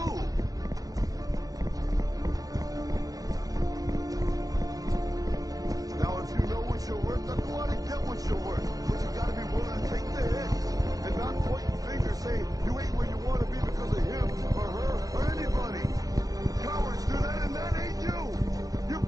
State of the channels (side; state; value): left; late; 0.17 ms